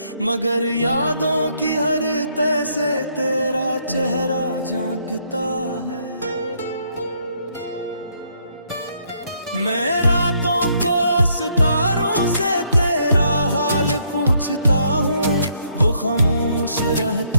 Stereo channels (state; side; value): inverted; both; correlation -0.71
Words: मगर यादों की हर तह से तेरा चेहरा झांकता है। मैं रातों को सितारों से तेरा हाल पूछता हूँ, वो खामोश